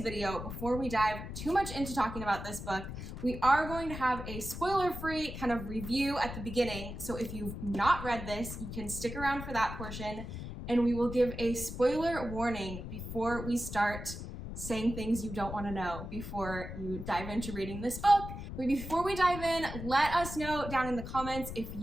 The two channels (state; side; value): noise; left; rumble, 8 dB below the sound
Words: video, before we dive too much into talking about this book, we are going to have a spoiler-free kind of review at the beginning. So if you've not read this, you can stick around for that portion, and we will give a spoiler warning before we start saying things you don't want to know before you dive into reading this book. But before we dive in, let us know down in the comments if